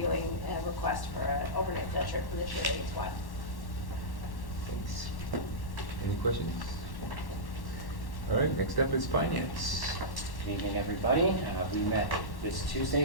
a request for an overnight field trip for the cheerleading squad. Thanks. Any questions? All right, next up is finance. Good evening, everybody. We met this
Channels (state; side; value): late; right; 1.1 ms